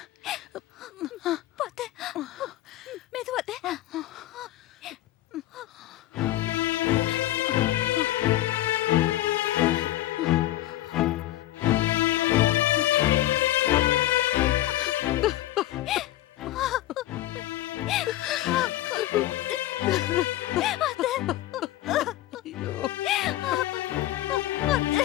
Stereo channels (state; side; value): quieter; right; 15.0 dB